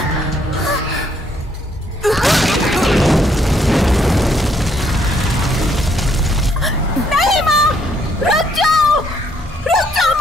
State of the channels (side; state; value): both; normal; correlation 0.69